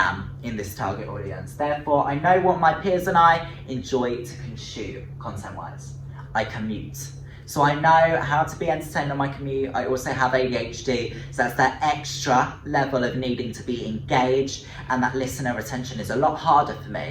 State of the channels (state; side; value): identical; both; correlation 1.00